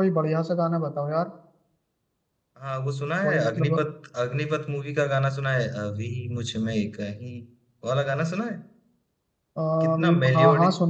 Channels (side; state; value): both; identical; correlation 1.00